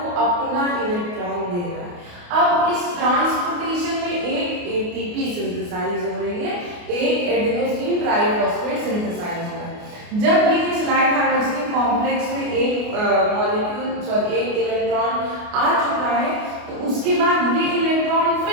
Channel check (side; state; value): left; late; 28 ms